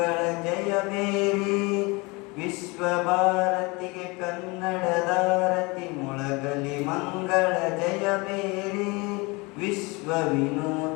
ಜಯಬೇರಿ ವಿಶ್ವ ಭಾರತಿಗೆ ಕನ್ನಡದಾರತಿ ಮೊಳಗಲಿ ಮಂಗಳ ಜಯಬೇರಿ ವಿಶ್ವ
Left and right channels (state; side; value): quieter; right; 26.2 dB